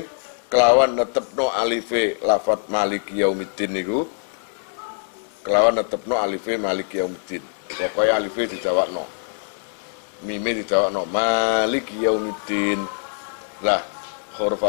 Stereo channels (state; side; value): silent; right; digital silence